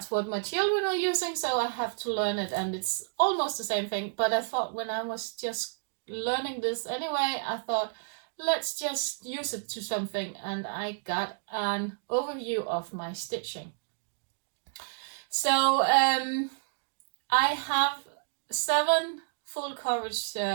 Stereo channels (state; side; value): silent; left; digital silence